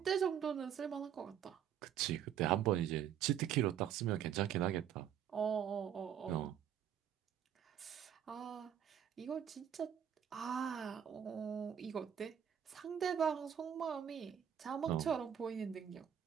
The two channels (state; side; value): quieter; left; 9.2 dB